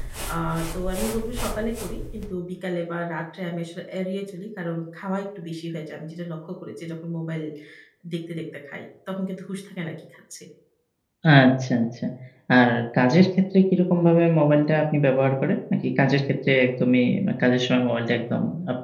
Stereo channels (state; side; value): identical; both; correlation 1.00